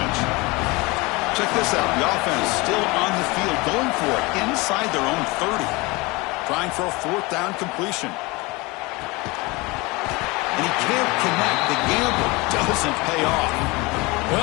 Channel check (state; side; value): quieter; right; 24.4 dB